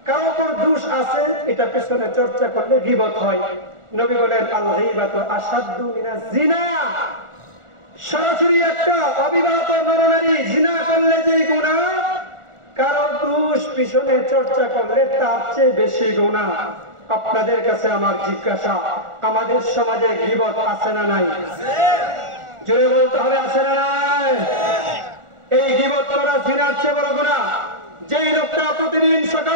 কারো উপর দোষ আছে এটা পেছনে চর্চা করলে গীবত হয়। নবী বলেন আল গীবাতু আশাদ্দু মিনাজ জিনা। সরাসরি একটা অবিবাহিত নরনারী জিনা করলে যে গুনাহ, কারো দোষ পিছনে চর্চা করলে তার চেয়ে বেশি গুনাহ। আপনাদের কাছে আমার জিজ্ঞাসা, আমাদের সমাজে গীবত আছে না নাই? জোরে বলতে হবে, আছে না নাই? এই গীবত করা জিনার চেয়ে বড় গুনাহ। যেই লোকটা প্রতিদিন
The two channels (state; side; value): late; left; 1.4 ms